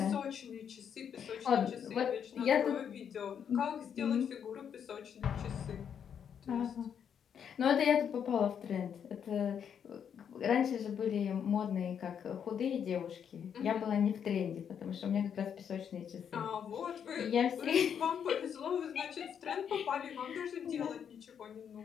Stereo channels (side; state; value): right; quieter; 8.0 dB